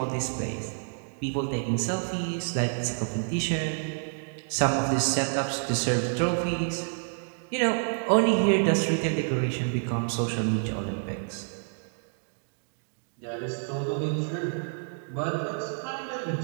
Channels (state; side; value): silent; left; digital silence